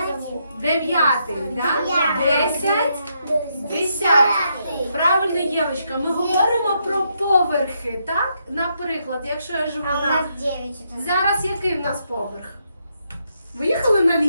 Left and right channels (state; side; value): inverted; both; correlation -0.78